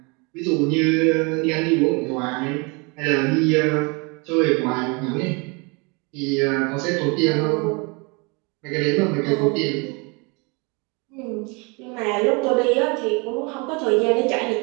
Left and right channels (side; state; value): left; quieter; 30.2 dB